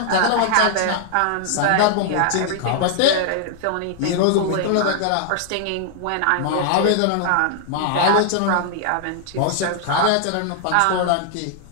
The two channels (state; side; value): different; both; correlation -0.01